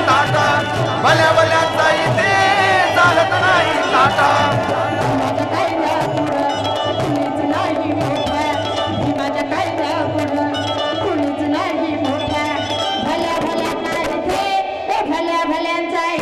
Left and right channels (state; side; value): identical; both; correlation 1.00